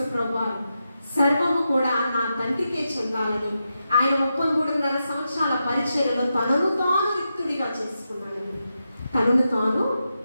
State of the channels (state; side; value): inverted; both; correlation -0.88